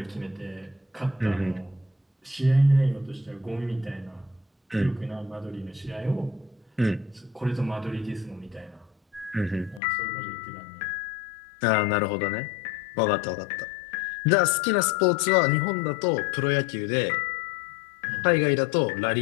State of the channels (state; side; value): drops out; right; at 9.8 s